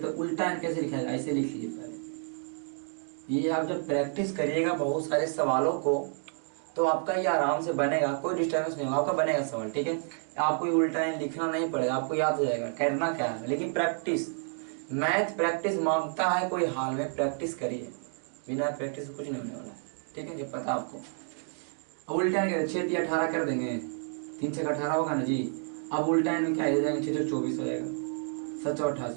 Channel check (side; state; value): left; silent; 57 dB below the other